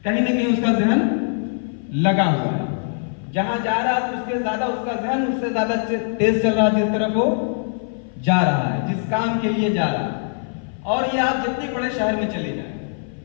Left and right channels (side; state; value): right; silent; 56 dB below the other